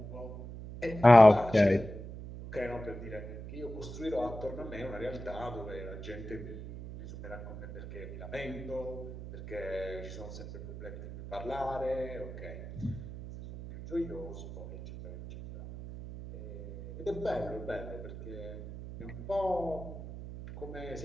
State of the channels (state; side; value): noise; right; hum, 10 dB below the sound